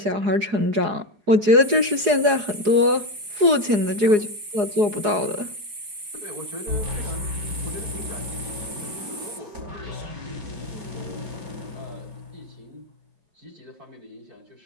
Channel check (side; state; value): left; late; 4.8 ms